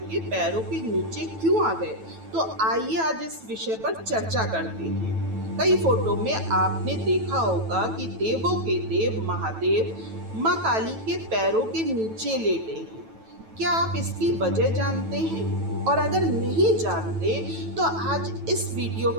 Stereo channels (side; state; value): left; late; 9.1 ms